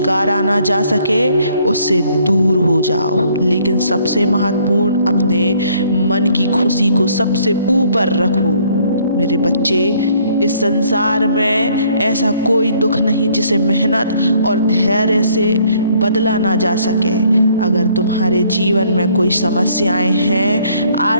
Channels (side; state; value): both; inverted; correlation -0.63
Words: ना जा सके उससे दूर हो जाओ। लेकिन सबसे महत्वपूर्ण, अपने मन की खुशी को सबसे ऊपर रखो। मेरे बच्चे, इस संसार में ऐसा कोई दुख नहीं जिसे मेहनत और धैर्य से बदला ना जा सके। अगर तुम्हारे जीवन में कोई समस्याएं हैं,